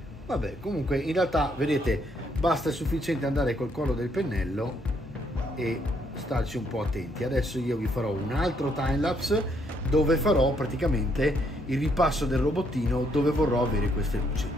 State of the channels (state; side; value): normal; both; correlation 0.72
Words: vabbè, comunque in realtà vedete basta, è sufficiente andare col collo del pennello e starci un po' attenti. Adesso io vi farò un altro timelapse dove farò praticamente il ripasso del robottino, dove vorrò avere queste luci.